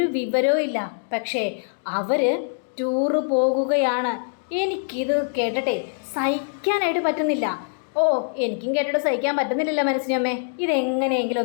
വിവരവും ഇല്ല. പക്ഷേ അവർ ടൂറ് പോകുകയാണ്. എനിക്കിത് കേട്ടിട്ടെ സഹിക്കാനായിട്ട് പറ്റുന്നില്ല. എനിക്കും കേട്ടിട്ട് സഹിക്കാൻ പറ്റുന്നില്ലല്ലോ മനസ്സിനമ്മേ. ഇതെങ്ങനെയെങ്കിലും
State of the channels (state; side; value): silent; right; digital silence